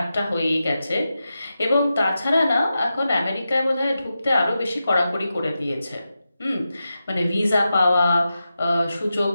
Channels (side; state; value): both; inverted; correlation -0.90